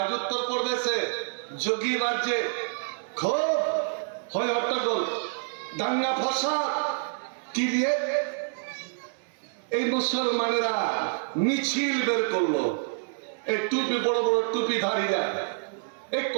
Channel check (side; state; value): left; silent; 60 dB below the other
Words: উত্তরপ্রদেশে যোগী রাজ্যে খুব হয় হট্টগোল, দাঙ্গা ফসাদ। কি দিয়ে? এই মুসলমানেরা মিছিল বের করলো, এই টুপি, বড় বড় টুপিধারীরা, এই